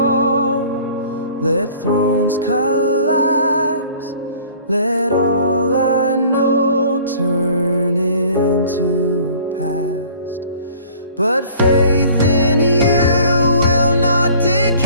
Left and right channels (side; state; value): both; inverted; correlation -0.51